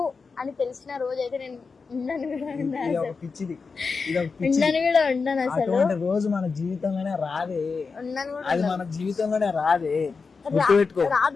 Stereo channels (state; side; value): quieter; right; 4.8 dB